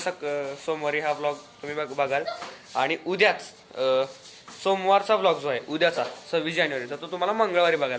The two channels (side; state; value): both; identical; correlation 1.00